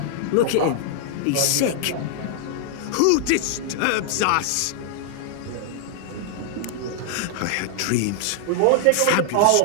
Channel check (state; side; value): different; both; correlation -0.01